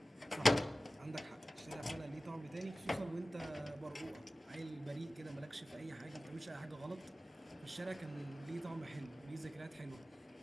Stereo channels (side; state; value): both; normal; correlation 0.96